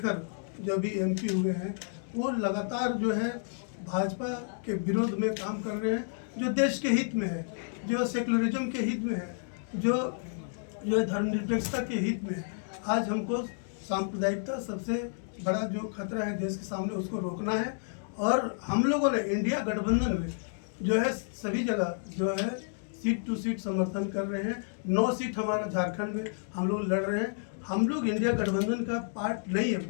जो भी एमपी हुए हैं, वो लगातार जो है भाजपा के विरोध में काम कर रहे हैं, जो देश के हित में है, जो सेकुलरिज्म के हित में है, जो धर्मनिरपेक्षता के हित में है। आज हमको सांप्रदायिकता सबसे बड़ा जो खतरा है देश के सामने, उसको रोकना है। और हम लोगों ने इंडिया गठबंधन में जो है सभी जगह जो है सीट टू सीट समर्थन कर रहे हैं। 9 सीट हमारा झारखंड में हम लोग लड़ रहे हैं। हम लोग इंडिया गठबंधन का पार्ट नहीं है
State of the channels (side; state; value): right; silent; digital silence